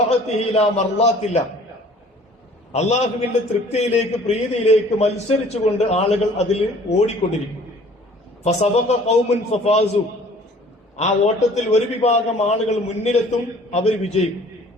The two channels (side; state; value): both; normal; correlation 0.52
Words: ലാ മർളാത്തില്ല. അള്ളാഹുവിന്റെ തൃപ്തിയിലേക്ക്, പ്രീതിയിലേക്ക് മത്സരിച്ചുകൊണ്ട് ആളുകൾ അതിൽ ഓടിക്കൊണ്ടിരിക്കും. ഫസബഖ ഖൗമുൻ ഫഫാസു. ആ ഓട്ടത്തിൽ ഒരു വിഭാഗം ആളുകൾ മുന്നിലെത്തും, അവർ വിജയിക്കും.